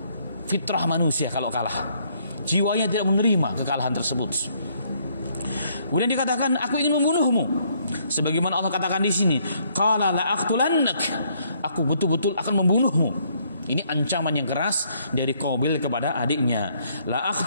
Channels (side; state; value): both; inverted; correlation -0.68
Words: fitrah manusia kalau kalah. Jiwanya tidak menerima kekalahan tersebut. Kemudian dikatakan, aku ingin membunuhmu. Sebagaimana Allah katakan di sini, qala la aqtulannak. Aku betul-betul akan membunuhmu. Ini ancaman yang keras dari Qabil kepada adiknya. La